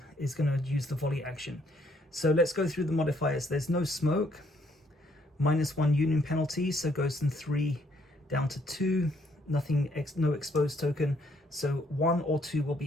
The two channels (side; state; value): both; normal; correlation 0.68